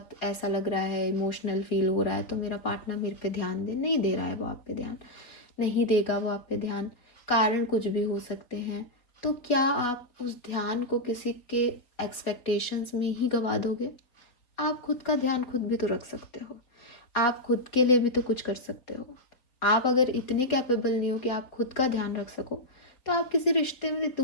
ऐसा लग रहा है, इमोशनल फील हो रहा है, तो मेरा पार्टनर मेरे पे ध्यान दे। नहीं दे रहा है वो आप पे ध्यान, नहीं देगा वो आप पे ध्यान, कारण कुछ भी हो सकते हैं। तो क्या आप उस ध्यान को किसी के एक्सपेक्टेशंस में ही गवा दोगे? आप खुद का ध्यान खुद भी तो रख सकते हो, आप खुद के लिए भी तो कुछ कर सकते हो। आप अगर इतने कैपेबल नहीं हो कि आप खुद का ध्यान रख सको तो आप किसी रिश्ते में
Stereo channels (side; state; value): right; late; 4.0 ms